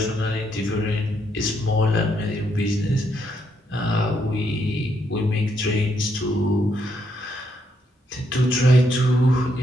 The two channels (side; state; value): both; normal; correlation 0.76